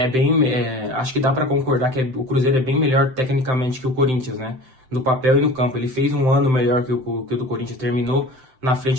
acho que dá para concordar que o Cruzeiro é bem melhor tecnicamente que o Corinthians, né? No papel e no campo. Ele fez um ano melhor que o do Corinthians, terminou na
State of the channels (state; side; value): late; left; 7.8 ms